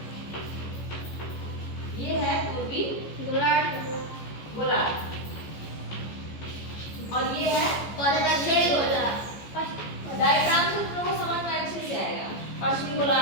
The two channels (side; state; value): right; late; 14 ms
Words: ये है पूर्वी गोलार्ध, और ये है दक्षिणी गोलार्ध। डायग्राम से तुम लोगों को समझ में अच्छे से आएगा। पश्चिमी